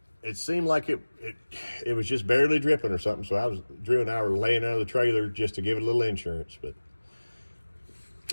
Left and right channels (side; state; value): both; inverted; correlation -1.00